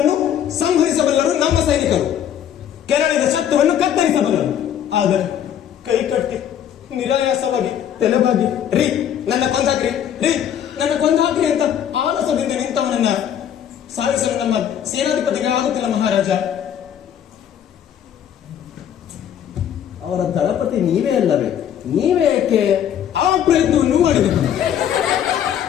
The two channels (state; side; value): quieter; right; 9.6 dB